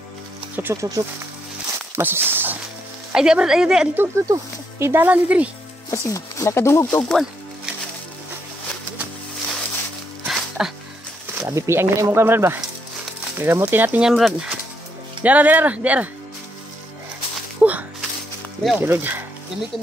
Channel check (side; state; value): both; normal; correlation 0.76